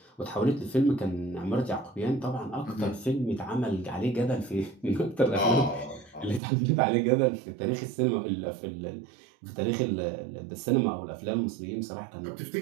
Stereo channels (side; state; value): left; drops out; at 6.4 s